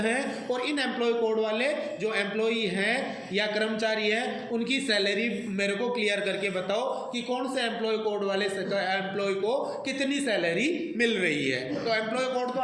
और इन एम्प्लॉय कोड वाले जो एम्प्लॉय हैं या कर्मचारी हैं उनकी सैलरी मेरे को क्लियर करके बताओ कि कौन से एम्प्लॉय कोड वाले एम्प्लॉय को कितनी सैलरी मिल रही है। तो एम्प्लॉय कोड तो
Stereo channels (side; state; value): both; identical; correlation 1.00